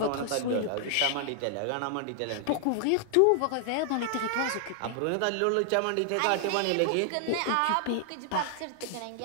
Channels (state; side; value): different; both; correlation 0.00